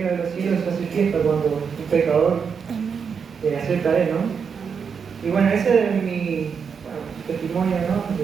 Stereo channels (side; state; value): left; quieter; 6.3 dB